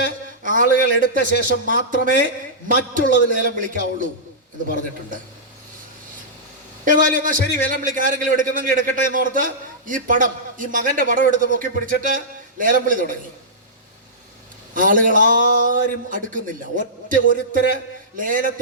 ആളുകൾ എടുത്ത ശേഷം മാത്രമേ മറ്റുള്ളത് ലേലം വിളിക്കാവുള്ളൂ എന്ന് പറഞ്ഞിട്ടുണ്ട്. ഏതായാലും എന്നാൽ ശരി, ലേലം വിളിക്കാൻ ആരെങ്കിലും എടുക്കുന്നെങ്കിൽ എടുക്കട്ടെ എന്നോർത്ത് ഈ മകന്റെ പടം എടുത്ത് പൊക്കി പിടിച്ചിട്ട് ലേലം വിളി തുടങ്ങി. ആളുകൾ ആരും അടുക്കുന്നില്ല. ഒരുത്തര്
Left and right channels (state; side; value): normal; both; correlation -0.15